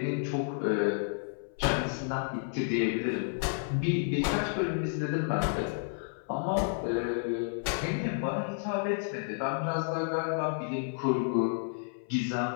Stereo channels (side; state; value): right; silent; 57 dB below the other